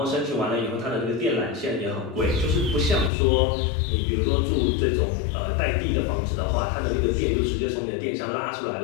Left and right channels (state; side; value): drops out; right; at 3.1 s